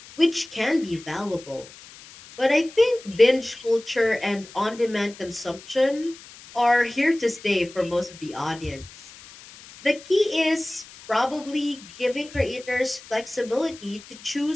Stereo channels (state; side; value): noise; left; hiss, 19 dB below the sound